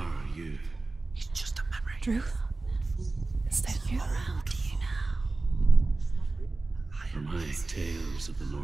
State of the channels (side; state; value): left; quieter; 3.3 dB